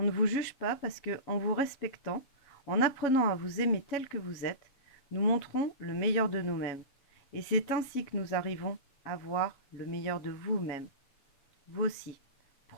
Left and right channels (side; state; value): right; late; 7.2 ms